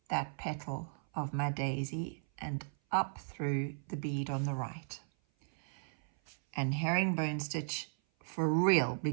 that petal of my daisy and up through the bead on the right. And herringbone stitch for real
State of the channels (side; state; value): left; silent; 54 dB below the other